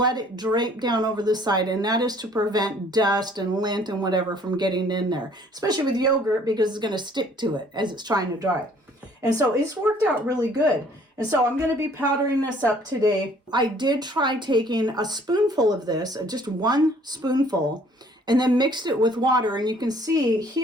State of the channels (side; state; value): both; normal; correlation 0.58